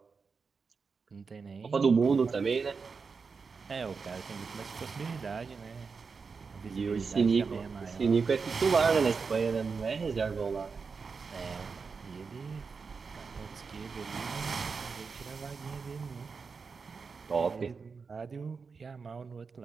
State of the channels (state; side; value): quieter; left; 5.1 dB